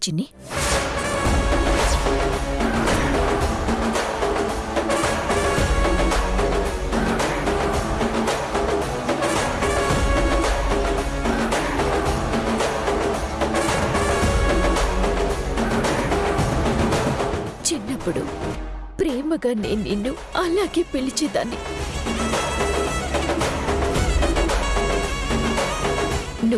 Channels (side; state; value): both; identical; correlation 1.00